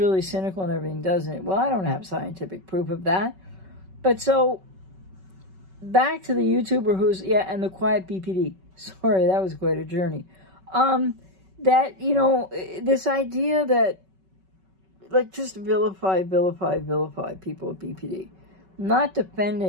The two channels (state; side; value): late; left; 5.3 ms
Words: cynical and everything, doesn't it? Well, I don't have scientific proof of that. But so, back to the YouTuber who's, and the quiet BPD. Sorry, that was quite a journey. That, you know, this idea that, like, just vilify people with BPD. Not